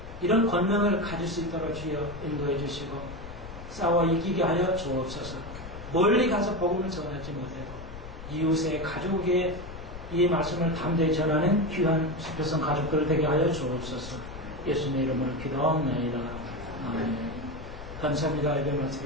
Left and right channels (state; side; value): noise; left; rumble, 12 dB below the sound